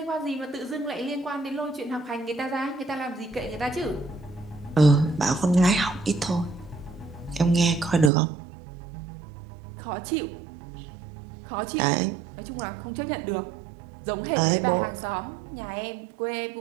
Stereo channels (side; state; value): left; drops out; at 8.1 s